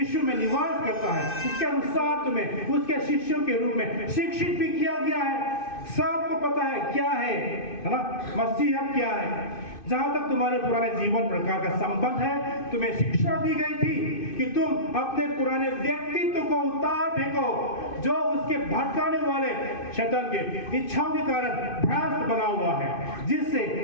में निवास करता है, इसके अनुसार तुम्हें उसके शिष्यों के रूप में शिक्षित भी किया गया है। सबको पता है क्या है ना, मसीहत क्या है। जहां तक तुम्हारे पुराने जीवन प्रकार का संबंध है, तुम्हें शिक्षा दी गई थी कि तुम अपने पुराने व्यक्तित्व को उतार फेंको, जो उसके भटकाने वाले शैतान के इच्छाओं के कारण भ्रष्ट बना हुआ है, जिससे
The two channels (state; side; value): late; right; 2.6 ms